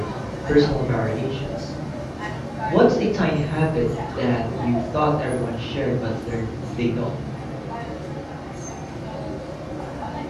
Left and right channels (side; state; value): both; identical; correlation 1.00